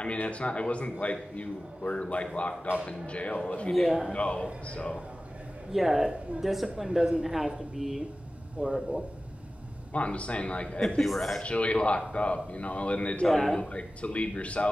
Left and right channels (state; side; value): normal; both; correlation 0.95